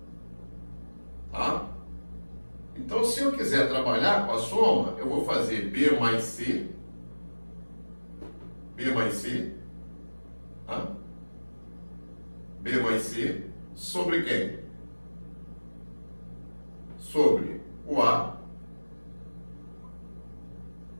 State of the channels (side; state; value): both; inverted; correlation -1.00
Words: Tá? Então, se eu quiser trabalhar com a soma, eu vou fazer B mais C, tá? B mais C, sobre quem? Sobre o A,